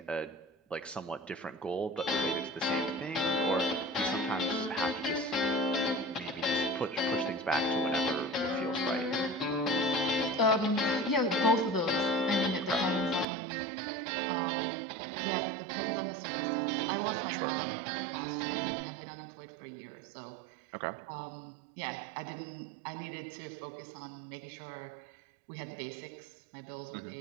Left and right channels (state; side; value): drops out; left; at 13.2 s